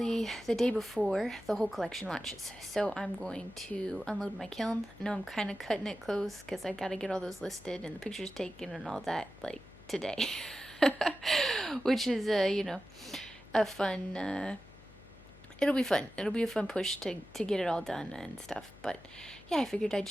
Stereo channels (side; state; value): left; noise; hum, 21 dB below the sound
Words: the day before the whole collection launches. So I'm going to unload my kiln. I know I'm kind of cutting it close because I got to get all those listed and the pictures taken and all that like today. Which is, you know, a fun, it'll be fun. It'll be a fun push to get it all done and stuff. But yeah, I figured I'd